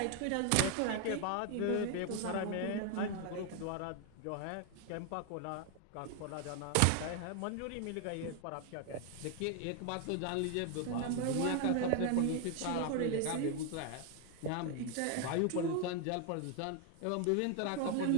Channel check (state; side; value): different; both; correlation 0.01